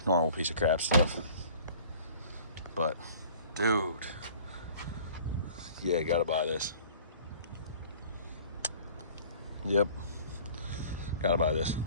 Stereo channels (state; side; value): inverted; both; correlation -0.49